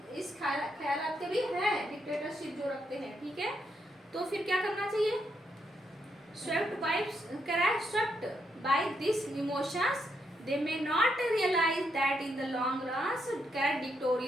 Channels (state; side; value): normal; both; correlation 0.79